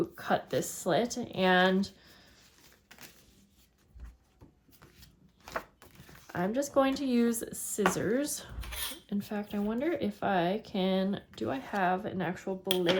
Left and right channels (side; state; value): both; identical; correlation 1.00